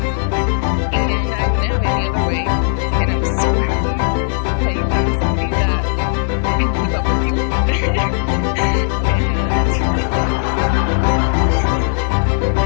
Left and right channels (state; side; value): silent; right; digital silence